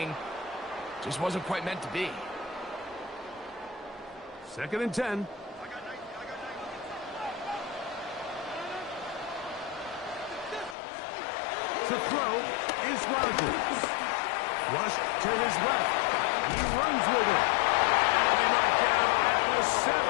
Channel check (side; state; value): right; drops out; at 10.8 s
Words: Just wasn't quite meant to be. Second and 10. To throw is Rodgers. Rush to his left. He runs with it. And they knock down at the 7.